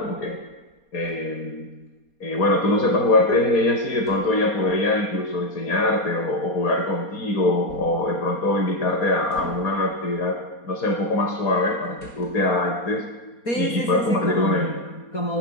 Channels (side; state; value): right; late; 4.2 ms